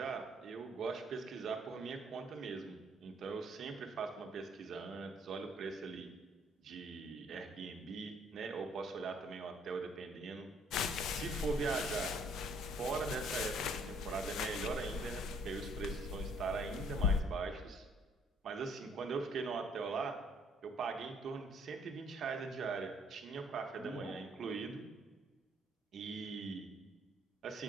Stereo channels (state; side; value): normal; both; correlation 0.63